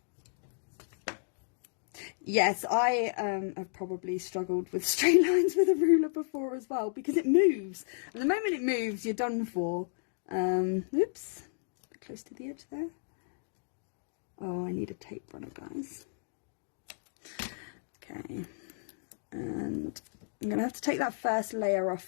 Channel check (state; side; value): silent; right; digital silence